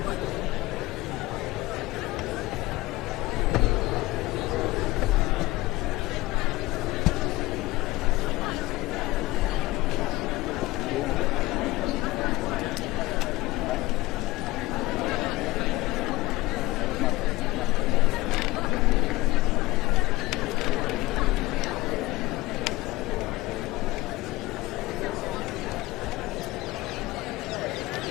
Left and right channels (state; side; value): quieter; right; 19.6 dB